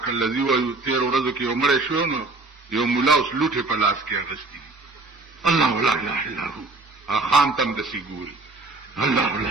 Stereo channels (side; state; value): left; quieter; 3.3 dB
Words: الذی وایو. تیر ورځو کې یو مړی شو نو یو مولا اوس لوټه په لاس کې اغستی. الله لا اله الا هو. خان تم د سیګوري. الله لا